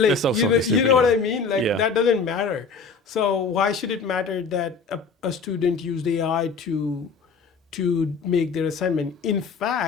so you know what I mean? Like, that doesn't matter. So why should it matter that a student used AI to make their assignment? In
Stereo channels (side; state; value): right; quieter; 4.9 dB